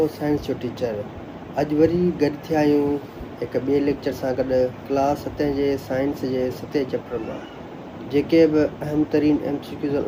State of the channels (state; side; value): identical; both; correlation 1.00